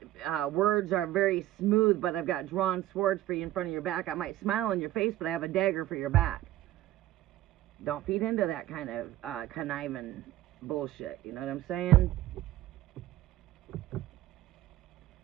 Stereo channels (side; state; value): left; quieter; 14.5 dB